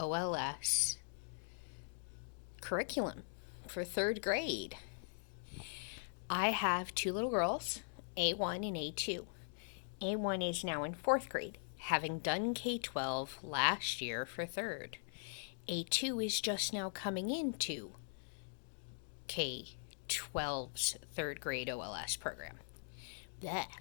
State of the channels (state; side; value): silent; right; digital silence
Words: curriculum for third grade. I have two little girls, A1 and A2. A1 is now in fourth grade, having done K12 last year for third. A2 is just now coming into K12's third grade OLS program. Blech,